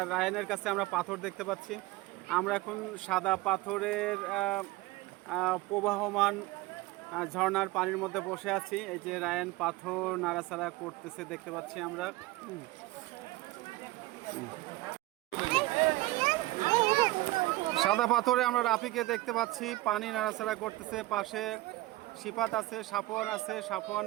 রায়নের কাছে আমরা পাথর দেখতে পাচ্ছি। আমরা এখন সাদা পাথরের প্রবাহমান ঝর্ণার পানির মধ্যে বসে আছি। এই যে রায়ন পাথর নাড়াচাড়া করতেছে দেখতে পাচ্ছি আমরা। সাদা পাথরে আমরা রাফিকে দেখতে পাচ্ছি, পানি নাড়াচাড়া করতেছে। পাশে সিফাত আছে, সাফওয়ান আছে,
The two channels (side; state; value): left; quieter; 19.0 dB